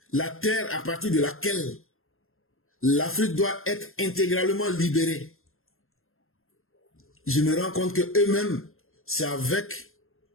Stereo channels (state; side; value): late; right; 0.61 ms